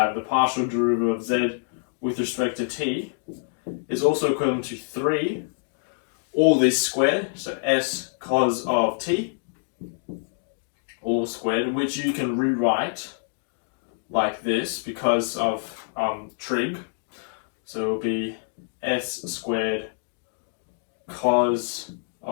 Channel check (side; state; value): right; silent; digital silence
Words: the partial derivative of z with respect to t is also equivalent to 3, all this squared, so s cos of t, all squared, which you can rewrite like this because of trig. So it will be s squared cos